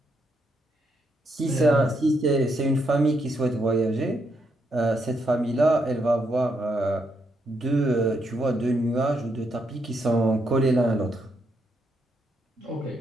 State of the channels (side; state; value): both; normal; correlation 0.78